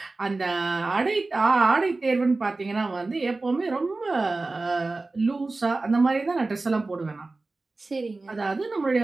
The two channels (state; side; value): quieter; left; 3.4 dB